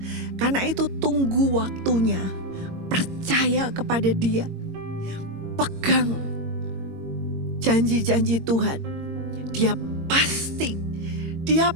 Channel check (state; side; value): late; left; 22 ms